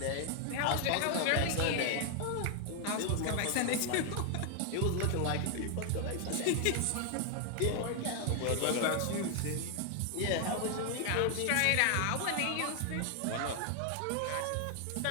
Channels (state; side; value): different; both; correlation 0.00